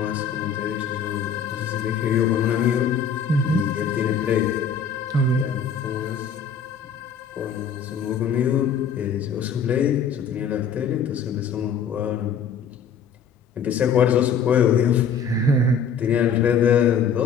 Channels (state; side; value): quieter; right; 6.3 dB